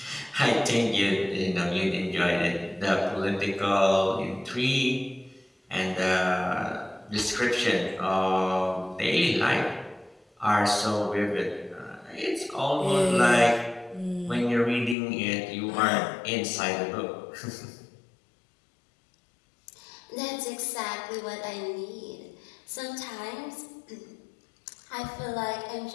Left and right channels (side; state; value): right; drops out; at 15.0 s